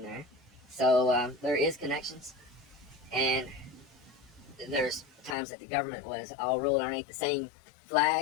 there. So there is connections. And there's times that the government was all ruled underneath the same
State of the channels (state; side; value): drops out; right; at 5.4 s